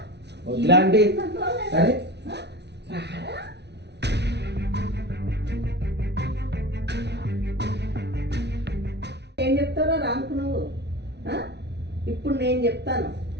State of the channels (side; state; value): left; late; 0.50 ms